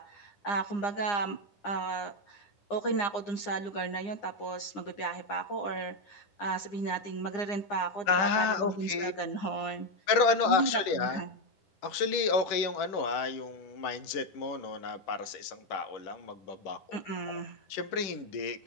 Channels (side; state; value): right; late; 10 ms